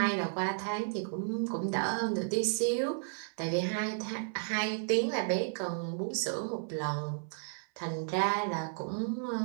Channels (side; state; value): left; silent; 56 dB below the other